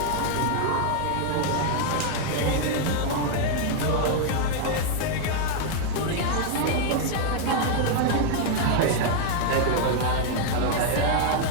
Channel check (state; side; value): different; both; correlation 0.00